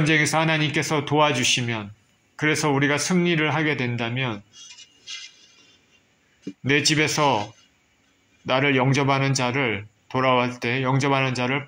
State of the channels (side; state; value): both; identical; correlation 1.00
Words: 하나님께서 도와주시면, 그래서 우리가 승리를 하게 된다면 내 집에서 나를 영접하는 자를, 돌아올 때 영접하는 자를